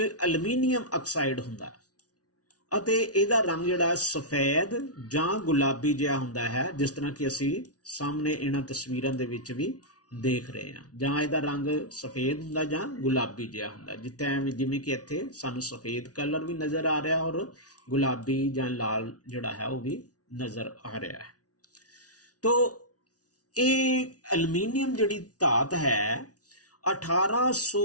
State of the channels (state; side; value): late; right; 0.68 ms